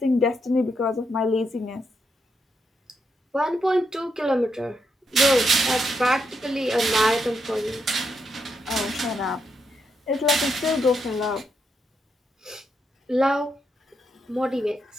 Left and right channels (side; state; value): both; normal; correlation 0.81